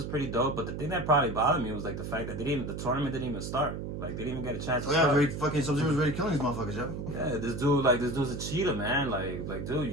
pretty dope. But the thing that probably bothered me was like the fact that the tournament didn't even start. Like they didn't even get a chance to start. Yeah, fucking Sub-Zero's ready killing these motherfuckers, yo. Yeah, this dude's a cheater, man. Like dude,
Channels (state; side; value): noise; right; hum, 6 dB below the sound